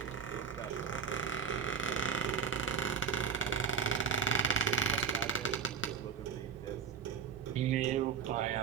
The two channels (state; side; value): quieter; left; 5.8 dB